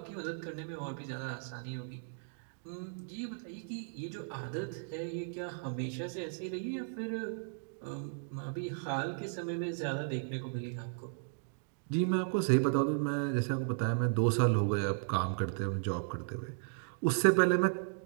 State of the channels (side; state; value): left; silent; digital silence